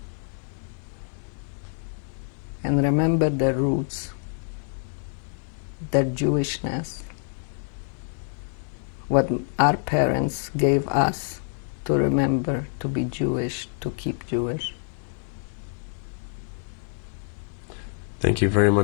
and remember their roots, their Jewishness, what our parents gave us to remember, to be Jewish, to keep Jewish. Thank you very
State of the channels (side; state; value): right; silent; digital silence